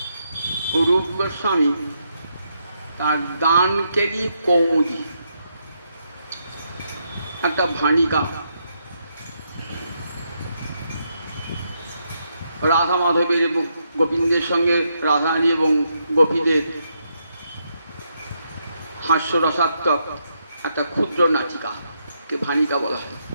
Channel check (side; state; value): both; inverted; correlation -0.79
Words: রূপ গোস্বামী তার দানকেলি কৌমুদী একটা ভাণিকা, রাধা মাধবের এবং গোবিন্দের সঙ্গে রাধারানী এবং গোপীদের হাস্যরসাত্মক একটা ক্ষুদ্র নাটিকাকে ভাণিকা বলা হয়।